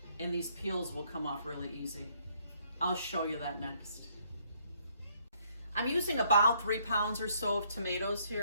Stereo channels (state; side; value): inverted; both; correlation -0.68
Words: and these peels will come off really easy. I'll show you that next. I'm using about 3 pounds or so of tomatoes